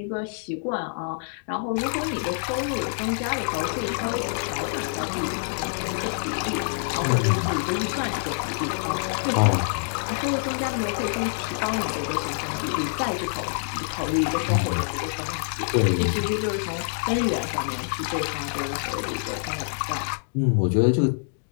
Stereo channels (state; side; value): silent; right; digital silence